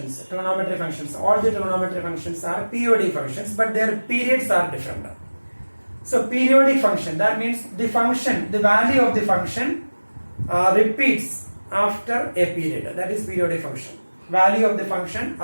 trigonometry functions, all the trigonometry functions are periodic functions, but their periods are different. So periodic function, that means the function, the value of the function repeats after a period. That is periodic function. Value of the function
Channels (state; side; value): inverted; both; correlation -1.00